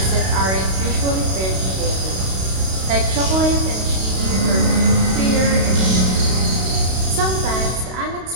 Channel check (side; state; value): left; late; 32 ms